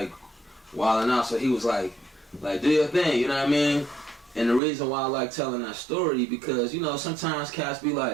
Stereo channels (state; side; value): drops out; left; at 4.6 s